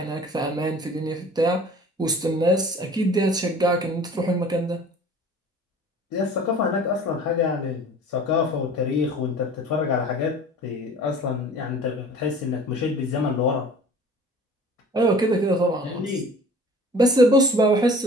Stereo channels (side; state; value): both; normal; correlation 0.46